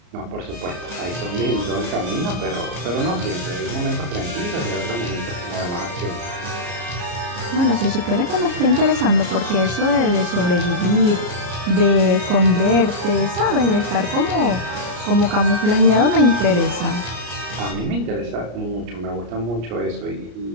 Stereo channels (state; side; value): late; left; 34 ms